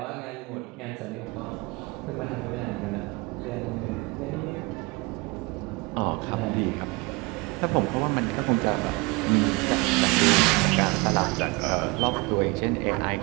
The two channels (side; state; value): left; quieter; 26.6 dB